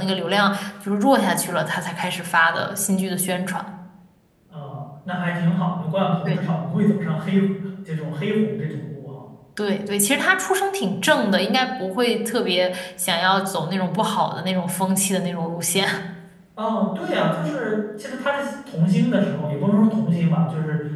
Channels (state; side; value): identical; both; correlation 1.00